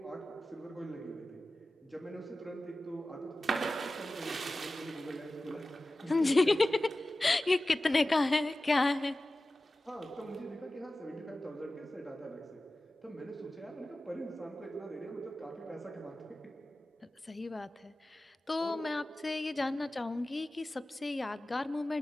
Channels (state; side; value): normal; both; correlation 0.95